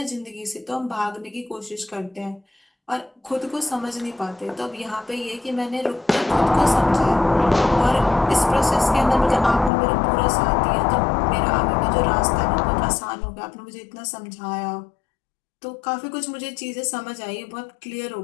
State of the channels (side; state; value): right; drops out; at 9.7 s